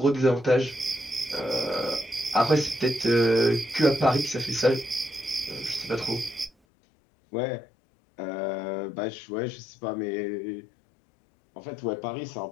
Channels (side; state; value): right; drops out; at 6.5 s